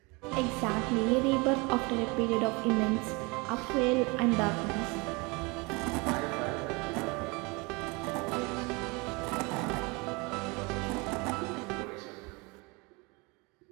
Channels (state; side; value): quieter; left; 27.6 dB